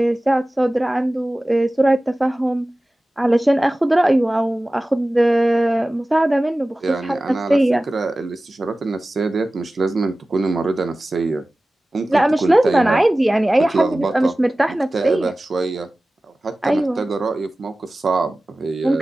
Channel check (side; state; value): both; normal; correlation 0.97